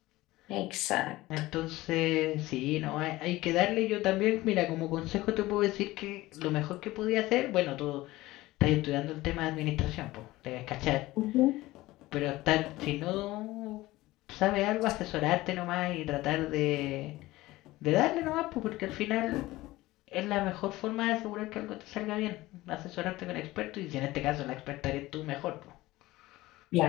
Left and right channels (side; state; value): right; quieter; 18.2 dB